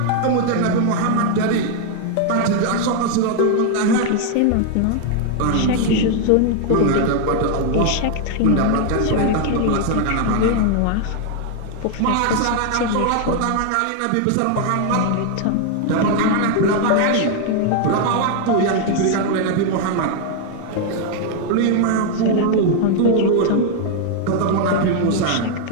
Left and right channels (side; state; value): both; different; correlation 0.00